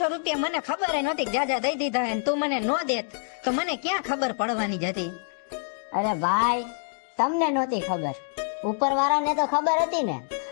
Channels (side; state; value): right; silent; 61 dB below the other